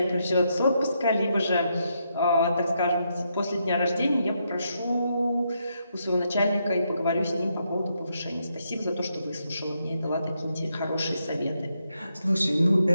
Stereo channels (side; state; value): both; inverted; correlation -0.80